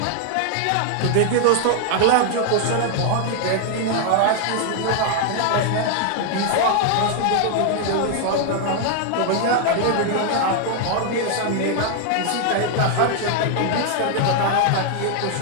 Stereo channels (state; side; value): different; both; correlation 0.00